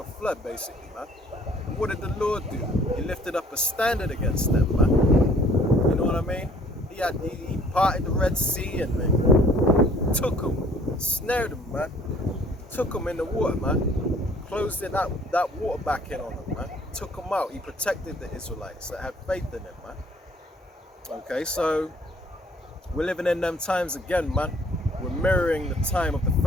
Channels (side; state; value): both; normal; correlation 0.57